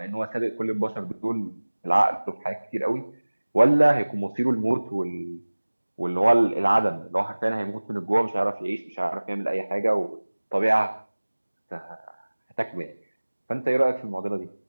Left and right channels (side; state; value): both; inverted; correlation -1.00